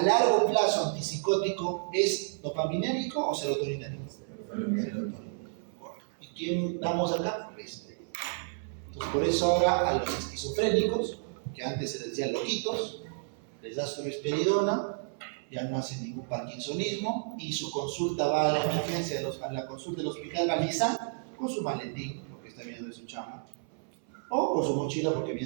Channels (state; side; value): silent; left; 57 dB below the other